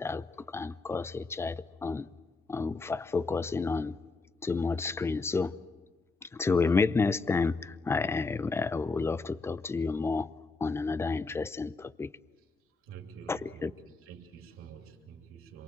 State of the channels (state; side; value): quieter; right; 3.9 dB